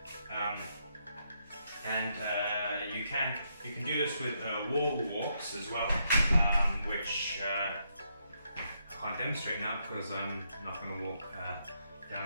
and you can do this with wall walks as well, which I can't demonstrate now because I'm not going to walk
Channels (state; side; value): inverted; both; correlation -0.78